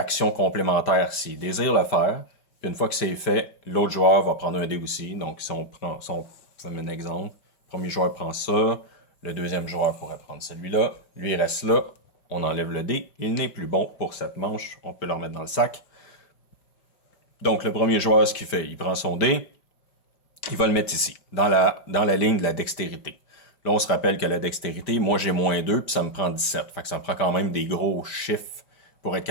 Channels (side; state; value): right; late; 5.0 ms